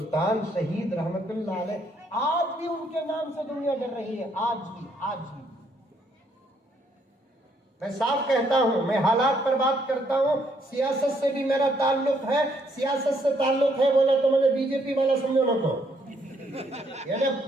शहीद रहमतुल्लाह अलैह, आज भी उनके नाम से दुनिया डर रही है, आज भी। मैं साफ कहता हूं, मैं हालात पर बात करता हूं, सियासत से भी मेरा ताल्लुक है। सियासत से ताल्लुक है बोला तो मुझे बीजेपी वाला समझो ना, को यानी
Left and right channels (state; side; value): normal; both; correlation 0.70